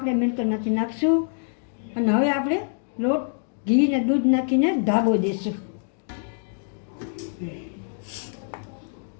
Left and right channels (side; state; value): right; silent; 62 dB below the other